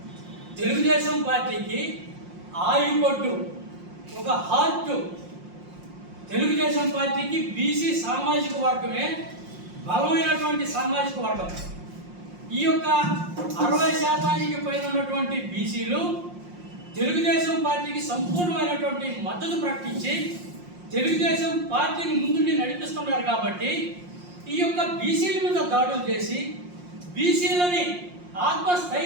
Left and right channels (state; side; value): late; left; 5.6 ms